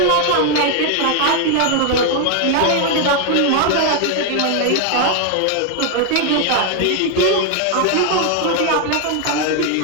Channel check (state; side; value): different; both; correlation 0.01